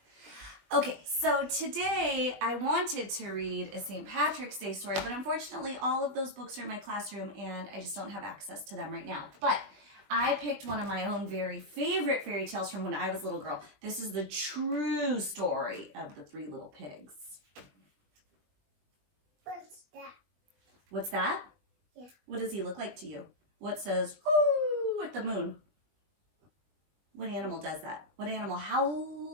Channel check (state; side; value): late; left; 20 ms